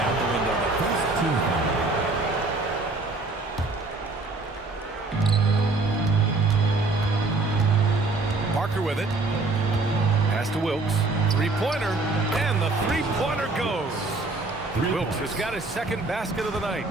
the window there. Parker with it. Pass to Wilkes. Three-pointer, and the three-pointer goes. Wilkes has got his second basket of the night.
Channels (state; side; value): quieter; left; 3.4 dB